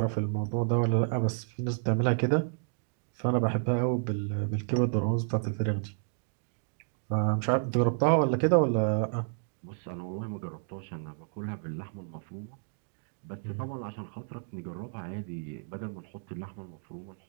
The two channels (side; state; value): left; silent; digital silence